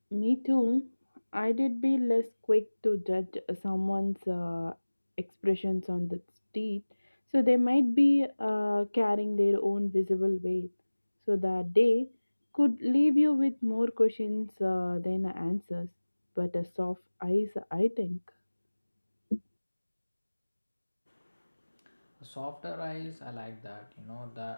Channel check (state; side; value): inverted; both; correlation -1.00